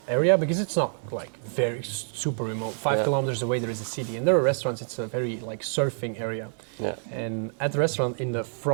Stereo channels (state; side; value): silent; left; 60 dB below the other